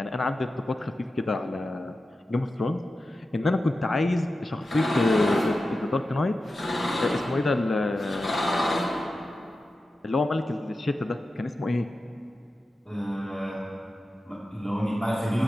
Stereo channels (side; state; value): both; normal; correlation 0.93